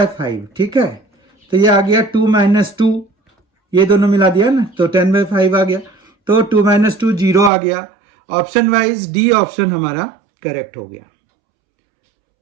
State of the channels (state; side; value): drops out; left; at 7.5 s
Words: ठीक है, तो ये आ गया 2 माइनस 2, ये दोनों मिला दिया ना तो 10/5 आ गया, तो 2 माइनस 2 0 आ गया। ऑप्शन वाइज डी ऑप्शन हमारा करेक्ट हो गया।